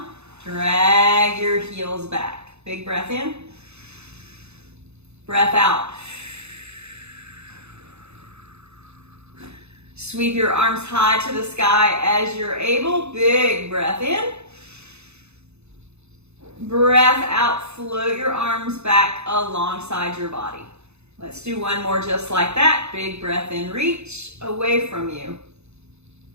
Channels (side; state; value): left; late; 0.81 ms